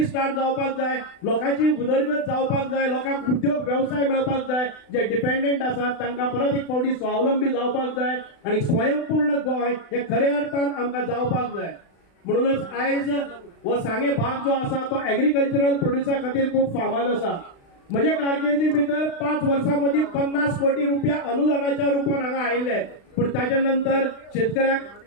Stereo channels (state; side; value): late; right; 36 ms